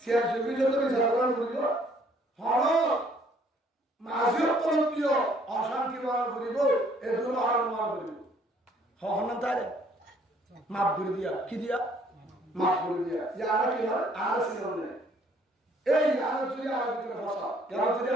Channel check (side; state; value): both; normal; correlation 0.62